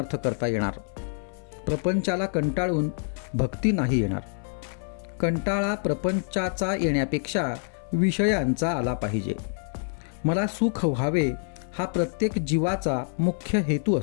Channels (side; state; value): right; silent; 60 dB below the other